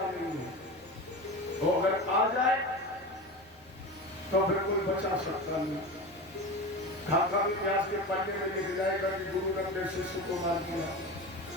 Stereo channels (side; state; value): right; noise; rumble, 28 dB below the sound